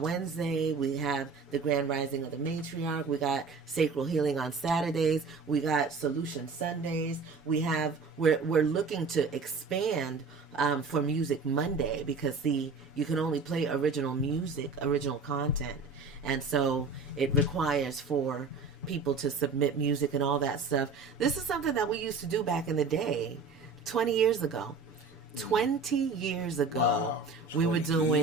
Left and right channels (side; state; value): left; quieter; 4.5 dB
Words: we have the Grand Rising of the Matriarch, we got Sacral Healing on Saturdays, we got Solution Sundays, we're looking to expand for Music Monday because, see, you can only play original music, original content, and so it requires for people to submit music and all that stuff. This is something that we used to do back in the day. 20 years ago, wow, we were